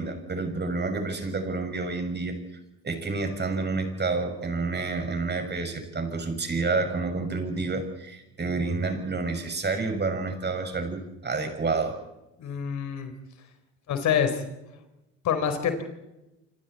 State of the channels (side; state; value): both; normal; correlation 0.23